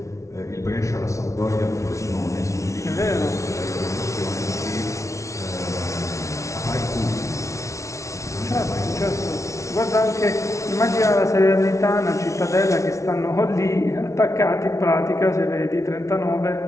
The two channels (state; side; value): late; right; 0.14 ms